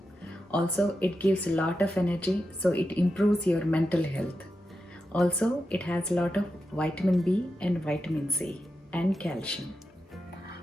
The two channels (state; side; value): normal; both; correlation 0.89